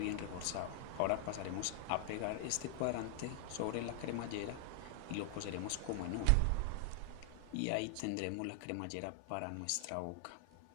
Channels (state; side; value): different; both; correlation 0.00